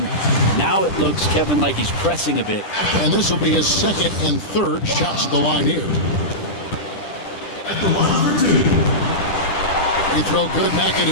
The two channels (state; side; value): late; right; 10 ms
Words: now it looks, Kevin, like he's pressing a bit. And this will be his 2nd and 3rd shots at the line here. Free throw good,